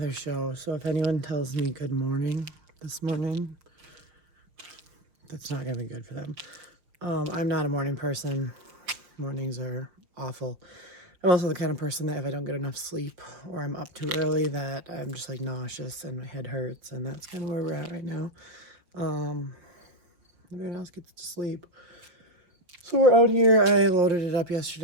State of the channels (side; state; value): left; late; 5.9 ms